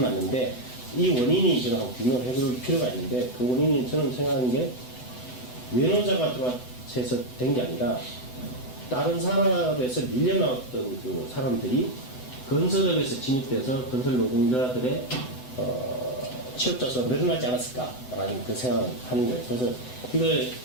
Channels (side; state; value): right; late; 8.0 ms